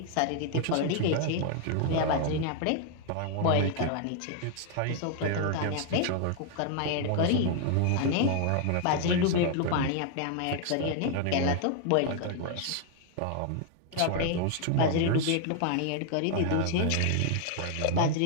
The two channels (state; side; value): different; both; correlation 0.00